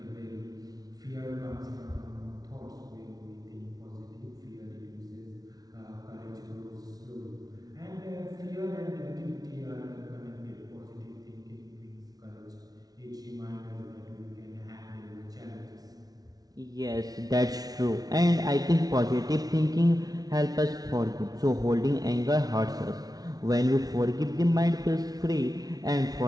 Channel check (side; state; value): left; late; 0.18 ms